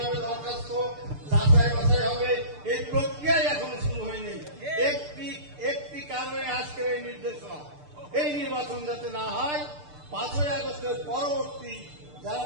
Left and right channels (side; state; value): left; late; 6.7 ms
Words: হবে, দরখাস্ত যাচাই বাছাই হবে, এই প্রক্রিয়াই এখনো শুরু হয়নি। একটি কারণে আজকের এই নির্দেশনা, এই নির্বাচন যাতে না হয়। 5ই আগস্টের পরবর্তী যারা